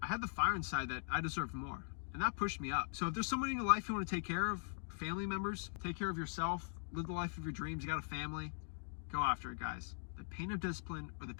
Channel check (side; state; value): right; silent; digital silence